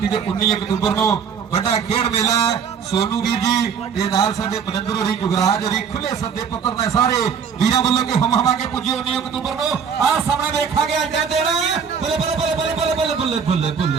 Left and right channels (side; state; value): left; quieter; 6.8 dB